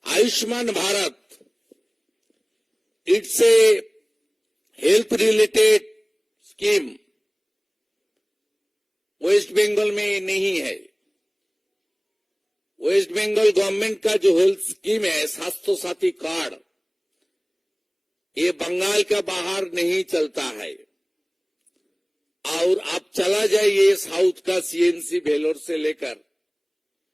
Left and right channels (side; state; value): both; identical; correlation 1.00